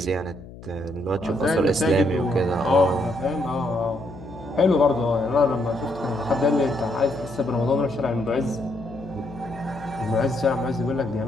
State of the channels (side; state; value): left; noise; hum, 16 dB below the sound